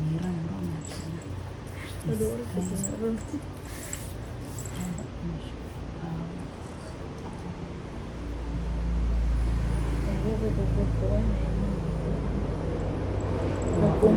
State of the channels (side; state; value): both; identical; correlation 1.00